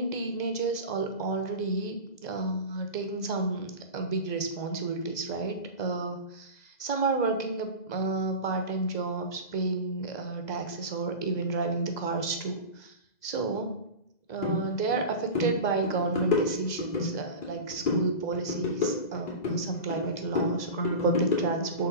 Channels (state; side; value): late; right; 2.0 ms